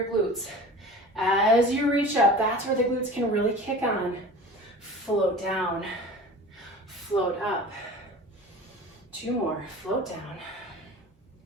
glutes. As you reach up, that's where the glutes can really kick on. Float down, float up. 2 more, float down,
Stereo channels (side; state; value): both; normal; correlation 0.39